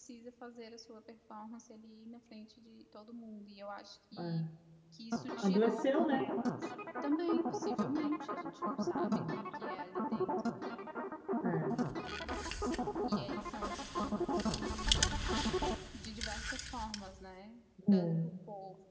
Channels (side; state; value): both; identical; correlation 1.00